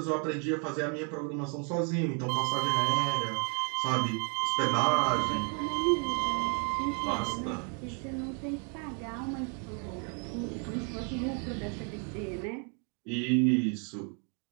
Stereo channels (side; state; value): left; quieter; 39.7 dB